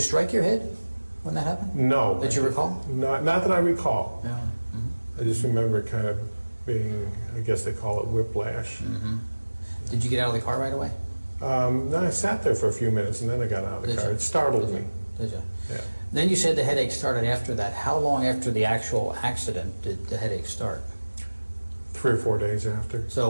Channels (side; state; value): both; inverted; correlation -1.00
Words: strike your head when that happened? No. Did you recall? Not that I recall. Yeah. I just remember it kind of being, I guess they call it whiplash. Did you get out of the car right away? No, I sat there for a few minutes, and then I got out of the Did car. you? It startled me. Did you? Yeah. Then you said the headache started after that. How long after the actual accident did the headache start? 3 or 4 days after. So